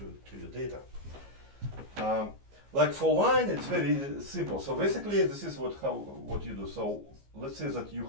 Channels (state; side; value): late; left; 15 ms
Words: your data. Like for line, it's very simple. So basically, this is what you do. So let's say that you